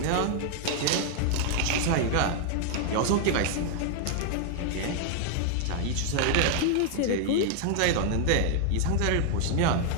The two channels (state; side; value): different; both; correlation 0.00